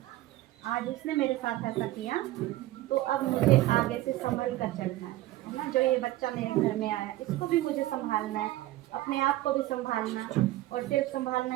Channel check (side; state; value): left; quieter; 16.3 dB